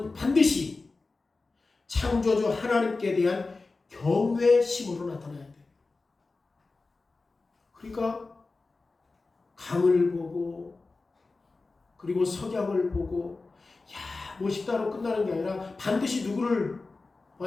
반드시 창조주 하나님께 대한 경외심으로 나타나야 돼요. 그러니까 강을 보고, 그리고 석양을 보고, 멋있다로 끝나는 게 아니라 반드시 누구를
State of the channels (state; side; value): quieter; right; 3.7 dB